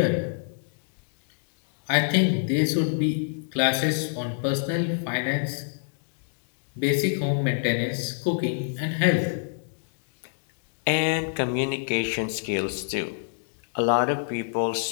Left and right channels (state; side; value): silent; right; digital silence